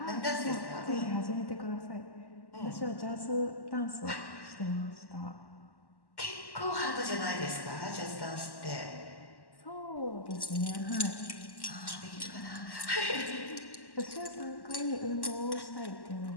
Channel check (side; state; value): right; late; 1.1 ms